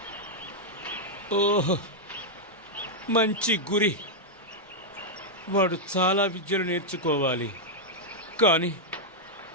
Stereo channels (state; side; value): normal; both; correlation -0.04